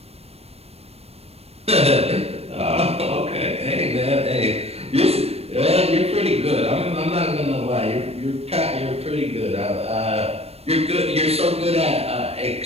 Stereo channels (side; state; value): left; late; 0.29 ms